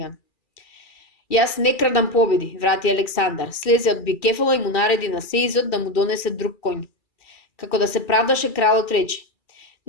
Јас не крадам победи, врати Александар, слезе од бикефала и му нареди на сеизот да му донесе друг коњ. Како да се правдаше, кралот рече:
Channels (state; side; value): late; right; 2.4 ms